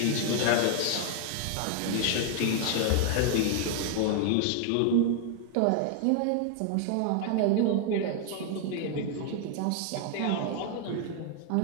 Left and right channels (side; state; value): both; different; correlation 0.00